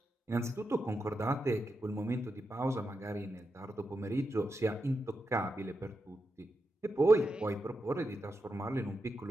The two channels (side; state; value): both; normal; correlation 0.87